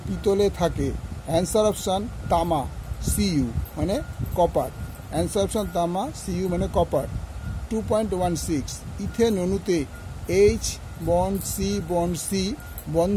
পিতলে থাকে? অ্যান্সার অপশান তামা, Cu মানে কপার। অ্যান্সার অপশান তামা, Cu মানে কপার। 2.16 ইথেন অণুতে H বন্ড C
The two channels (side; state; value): both; identical; correlation 1.00